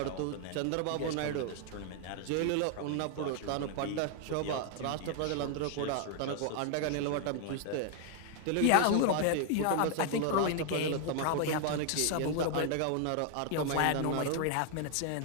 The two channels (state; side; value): different; both; correlation 0.00